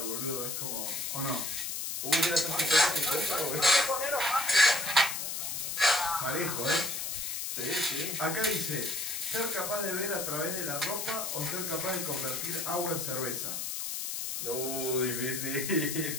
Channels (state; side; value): noise; left; hiss, 3 dB below the sound